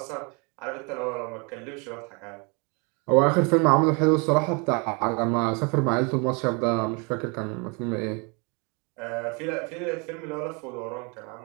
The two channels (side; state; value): left; quieter; 31.7 dB